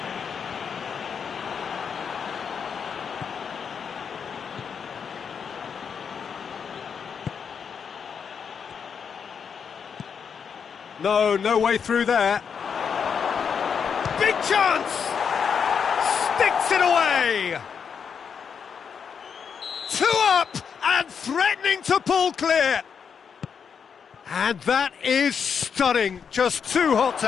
No way through there. Big chance! Sticks it away! 2 up and threatening to pull clear. And that is stunning. Just too hot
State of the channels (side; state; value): right; quieter; 6.7 dB